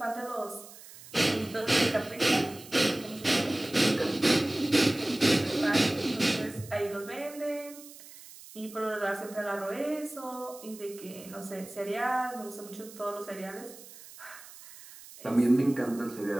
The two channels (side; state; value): right; noise; hiss, 18 dB below the sound